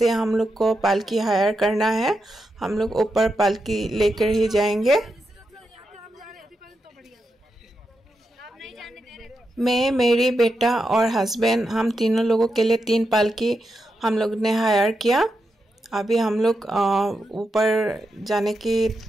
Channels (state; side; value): normal; both; correlation 0.86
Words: हम लोग को पालकी हायर करना है। हम लोग ऊपर पालकी लेकर ही जाएंगे। मैं, मेरी बेटा और हस्बैंड, हम तीनों लोगों के लिए 3 पालकी हम लोग ने हायर किया। अभी हम लोग ऊपर जाने